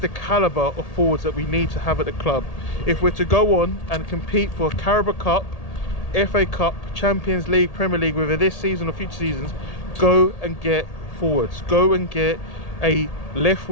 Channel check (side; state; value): right; late; 1.8 ms